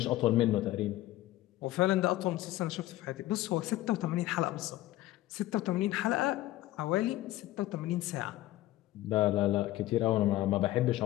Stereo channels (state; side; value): quieter; right; 15.9 dB